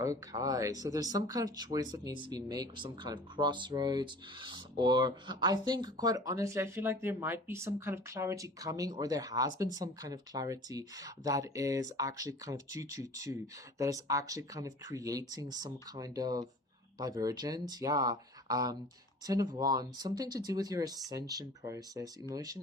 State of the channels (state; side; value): normal; both; correlation 0.43